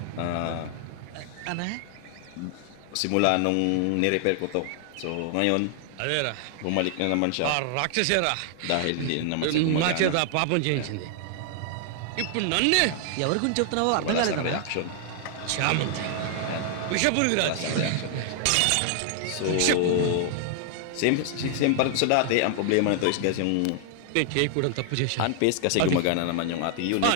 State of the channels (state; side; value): different; both; correlation 0.00